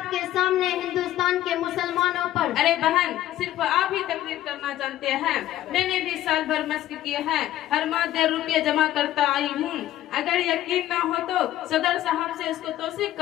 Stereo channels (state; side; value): quieter; right; 13.6 dB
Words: के सामने हिंदुस्तान के मुसलमानों पर। अरे बहन, सिर्फ आप ही तकरीर करना जानते हैं। मैंने भी साल भर मस्क किए हैं, हर माह 1.5 रुपये जमा करता आई हूँ। अगर यकीन ना हो तो सदर साहब से इसको तौसीक